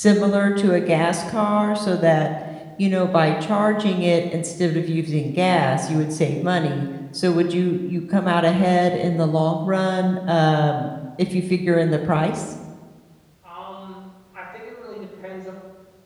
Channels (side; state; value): both; identical; correlation 1.00